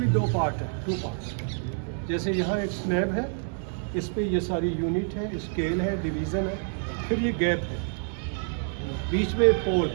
2 पार्ट है, 2 पार्ट। जैसे यहाँ एक स्लैब है, इस पे ये सारी यूनिट है, स्केल है, डिवीज़न है, फिर ये गैप है, बीच में पोल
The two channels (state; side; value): silent; left; 60 dB below the other